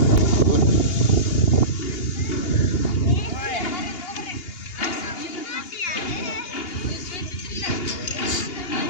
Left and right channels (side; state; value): right; late; 2.8 ms